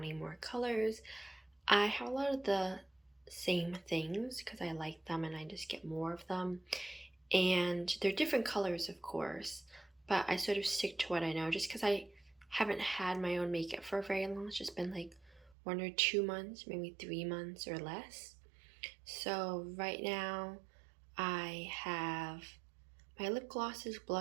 more colors. I have a lot of the same things because I like them and I just get more of them. And they're different colors, of course, but I sort of stick to what I know just because I haven't had my own makeup for very long. It's just been like 1 or 2 months, maybe 3 months or less. So right now I have my lip glosses,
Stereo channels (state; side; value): drops out; left; at 15.6 s